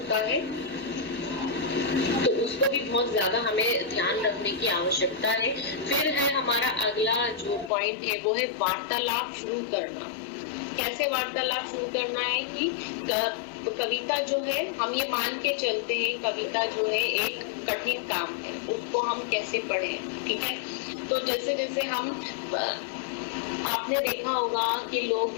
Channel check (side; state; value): right; drops out; at 7.7 s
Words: है। तो उसको भी बहुत ज्यादा हमें ध्यान रखने की आवश्यकता है। फिर है हमारा अगला जो पॉइंट है वो है वार्तालाप शुरू करना। कैसे वार्तालाप शुरू करना है कि कविता जो है, हम ये मान के चलते हैं कविता जो है एक कठिन काम है, उसको हम कैसे पढ़ें, ठीक है। तो जैसे जैसे हम, आपने देखा होगा कि लोग